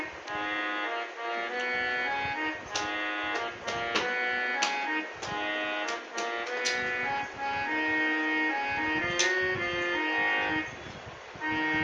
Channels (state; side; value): identical; both; correlation 1.00